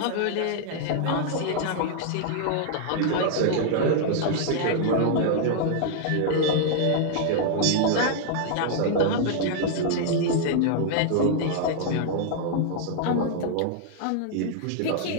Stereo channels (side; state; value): both; different; correlation -0.01